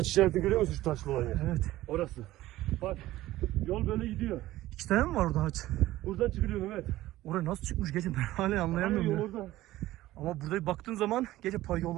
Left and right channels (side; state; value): left; quieter; 16.0 dB